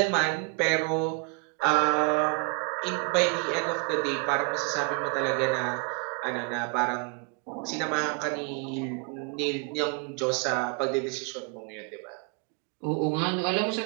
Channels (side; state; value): left; quieter; 34.5 dB